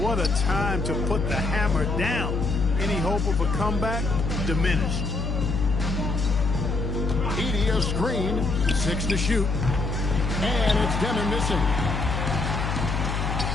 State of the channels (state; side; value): noise; left; hum, 1 dB below the sound